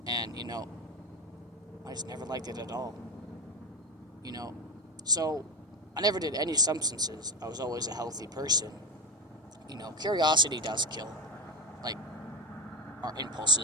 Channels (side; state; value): both; normal; correlation 0.20